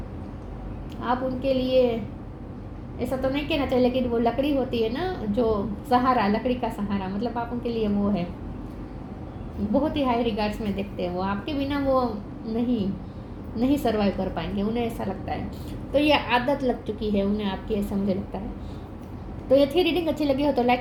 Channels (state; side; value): identical; both; correlation 1.00